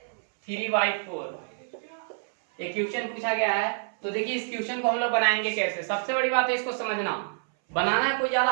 3/4 ये क्वेश्चन पूछा गया है। तो देखिए इस क्वेश्चन को हम लोग बनाएंगे कैसे। सबसे बड़ी बात है इसको समझना। बनाना कोई ज्यादा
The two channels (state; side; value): silent; left; 60 dB below the other